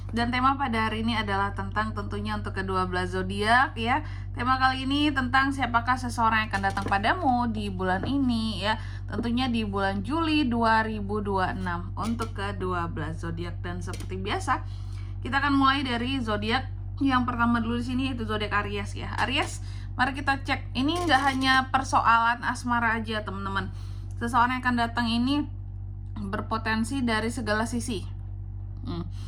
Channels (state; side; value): identical; both; correlation 1.00